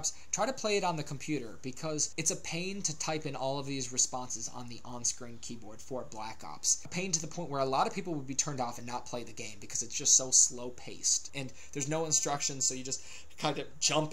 try to play it on the computer, because it's a pain to type in all of these responses on the on-screen keyboard for Black Ops. A pain to the point where a lot of people would be turned off and not play the game because it's just so slow-paced, and there's no instructions, so you just kind of jump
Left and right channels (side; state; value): both; normal; correlation 0.96